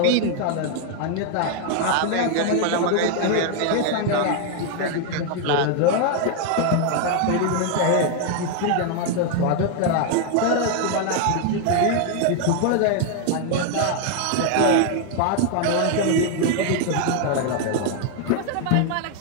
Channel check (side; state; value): both; different; correlation 0.00